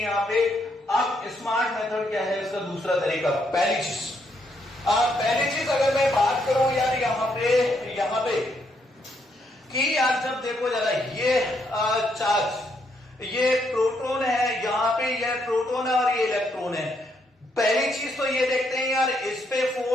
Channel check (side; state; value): both; normal; correlation 0.75